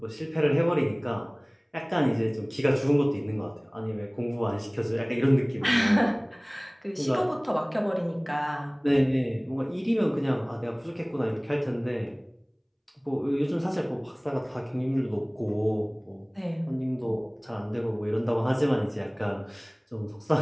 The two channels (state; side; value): identical; both; correlation 1.00